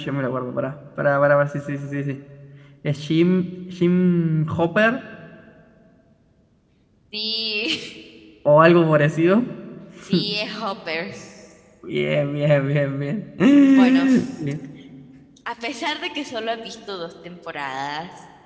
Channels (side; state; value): both; identical; correlation 1.00